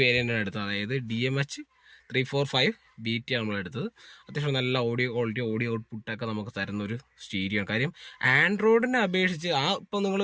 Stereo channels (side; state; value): both; identical; correlation 1.00